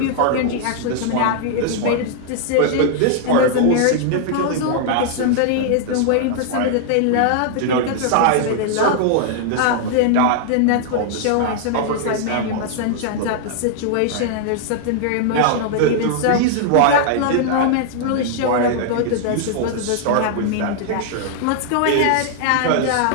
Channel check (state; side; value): different; both; correlation -0.01